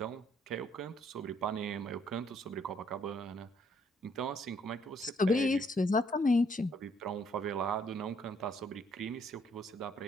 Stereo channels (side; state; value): both; normal; correlation 0.67